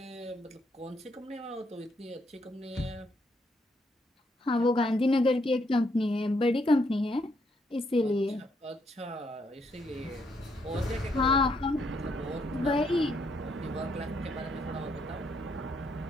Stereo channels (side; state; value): both; normal; correlation 0.74